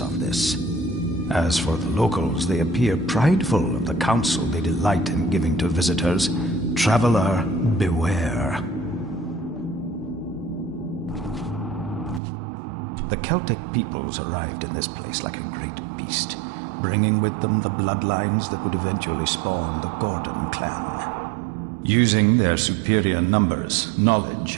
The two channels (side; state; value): left; drops out; at 12.2 s